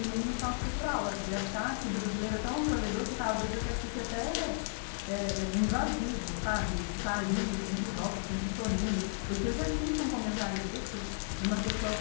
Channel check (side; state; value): right; silent; digital silence